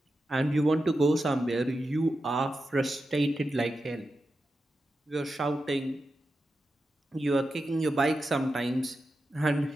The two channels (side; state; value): both; normal; correlation 0.90